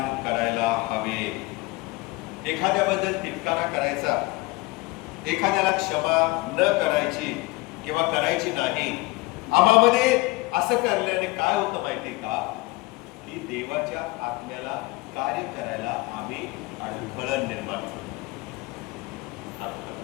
करायला हवे. एखाद्याबद्दल तिटकारा करायचा, एखाद्याला क्षमा न करायची किंवा करायची नाही, आम्हामध्ये असं करण्याने काय होतं माहिती का, की देवाच्या आत्म्याला कार्य करायला आम्ही अडथळा निर्माण करतो.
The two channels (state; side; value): quieter; right; 22.7 dB